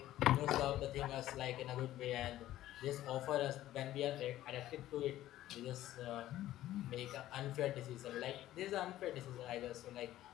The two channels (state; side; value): quieter; right; 14.1 dB